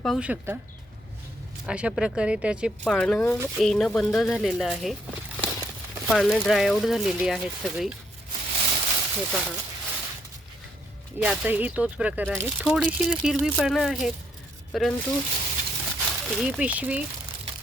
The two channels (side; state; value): both; normal; correlation 0.73